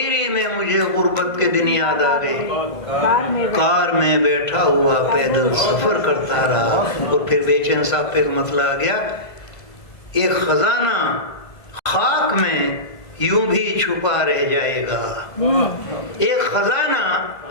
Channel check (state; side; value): late; right; 1.5 ms